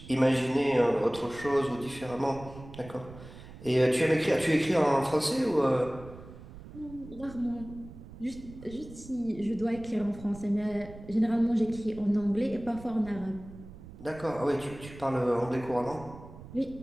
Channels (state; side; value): noise; right; rumble, 16 dB below the sound